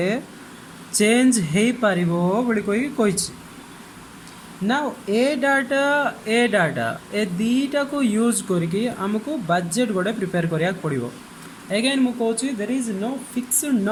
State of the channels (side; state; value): both; identical; correlation 1.00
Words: चेंज हो पारिबो बोली कही. नाउ ए डाटा ए दीटा को यूज करके आमको बजेट गोटे प्रिपेयर करिया पड़ो. अगेन मु कहूँ there is no fixed